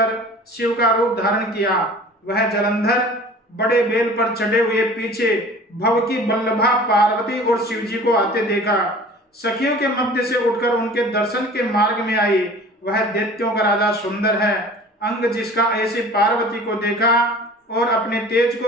शिव का रूप धारण किया। वह जलंधर बड़े बेल पर चढ़े हुए पीछे भव की बल्लभा पार्वती और शिव जी को आते देखा। सखियों के मध्य से उठकर उनके दर्शन के मार्ग में आई। वह दैत्यों का राजा सुंदर है। अंग जिसका ऐसी पार्वती को देखा और अपने तेज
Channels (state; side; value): normal; both; correlation 0.44